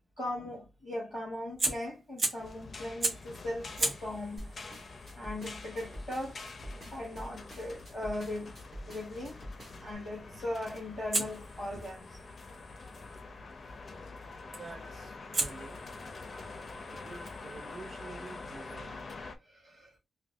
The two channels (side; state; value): both; normal; correlation 0.86